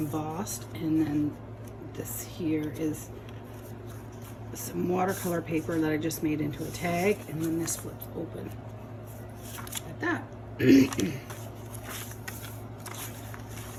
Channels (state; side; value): identical; both; correlation 1.00